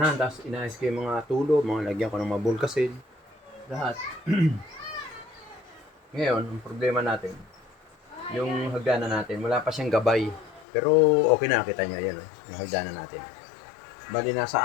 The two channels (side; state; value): right; drops out; at 10.7 s